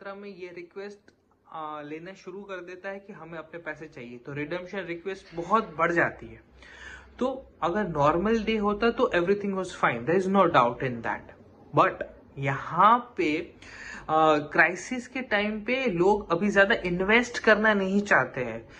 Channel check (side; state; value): both; identical; correlation 1.00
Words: में ये रिक्वेस्ट लेना शुरू कर देता है कि हमें अपने पैसे चाहिए, तो रिडम्पशन रिक्वेस्ट बहुत बढ़ जाती है। तो अगर नॉर्मल डे होता तो everything was fine, there is no doubt in that, but यहाँ पे क्राइसिस के टाइम पे लोग अभी ज्यादा इन्वेस्ट करना नहीं चाहते हैं,